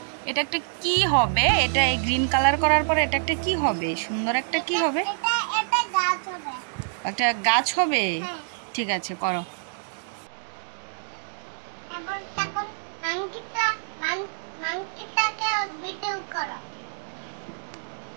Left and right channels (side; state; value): left; silent; digital silence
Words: এটা একটা কি হবে? এটা এই গ্রিন কালার করার পরে এটা একটা কি হবে? সুন্দর একটা কি হবে? এটা গাছ হবে। একটা গাছ হবে। ঠিক আছে করো। এখন তখন মাংকিটাকে ভিডিও করো।